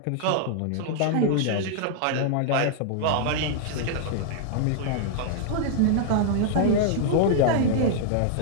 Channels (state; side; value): different; both; correlation -0.01